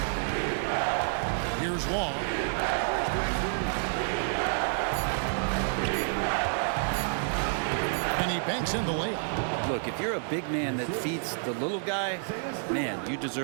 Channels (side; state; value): left; silent; digital silence